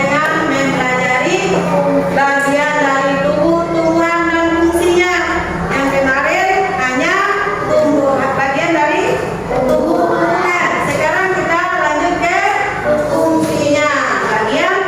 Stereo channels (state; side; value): identical; both; correlation 1.00